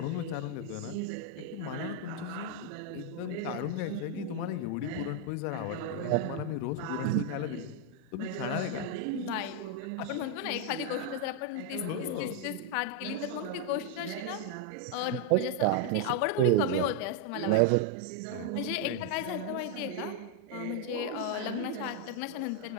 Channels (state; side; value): different; both; correlation 0.01